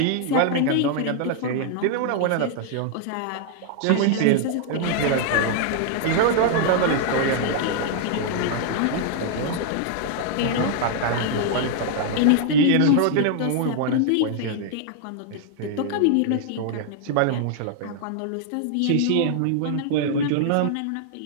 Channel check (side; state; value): both; different; correlation 0.00